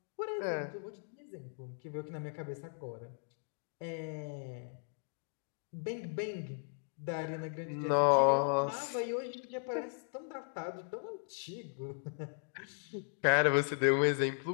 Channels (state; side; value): silent; right; digital silence